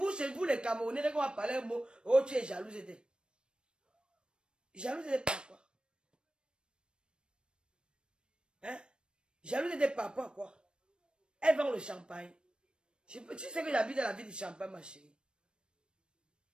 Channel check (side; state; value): left; late; 0.054 ms